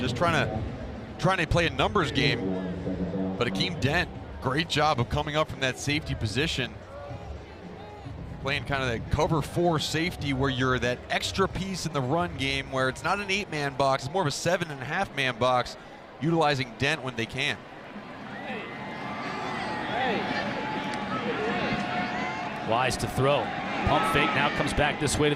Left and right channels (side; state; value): both; identical; correlation 1.00